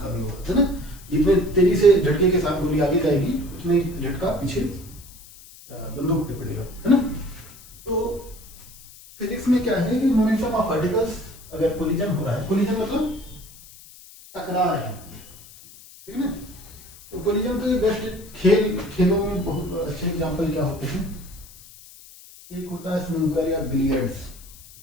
का भी होगा, है ना? जितने तेजी से झटके के साथ गोली आगे जाएगी उतने झटका पीछे बंदूक पे पड़ेगा, है ना? तो फिजिक्स में क्या है कि मोमेंटम ऑफ पार्टिकल्स अगर कोलिजन हो रहा है, कोलिजन मतलब टकरा रहे हैं, ठीक है ना? तो कोलिजन के बेस्ट खेलों में बहुत अच्छे एग्जांपल क्या होते हैं? एक होता है स्नूकर या बिलियर्ड्स,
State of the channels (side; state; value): left; noise; hiss, 20 dB below the sound